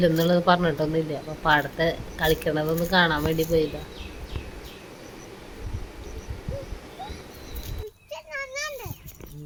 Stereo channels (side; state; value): both; identical; correlation 1.00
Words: പറഞ്ഞിട്ടൊന്നുമില്ല. അപ്പോൾ പാടത്തെ കളിക്കണതൊന്ന് കാണാൻ വേണ്ടി പോയതാണ്.